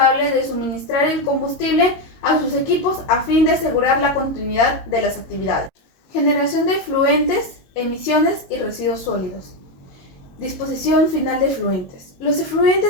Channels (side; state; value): right; late; 22 ms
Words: de suministrar el combustible a sus equipos a fin de asegurar la continuidad de las actividades. Generación de efluentes, emisiones y residuos sólidos. Disposición final de efluentes. Los